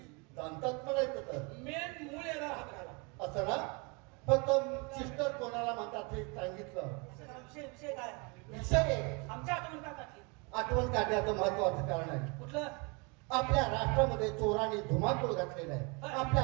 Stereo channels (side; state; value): left; quieter; 30.2 dB